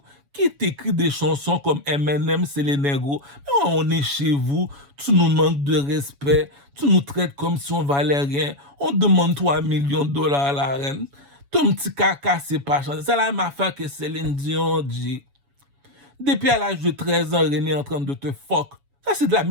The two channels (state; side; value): late; left; 7.1 ms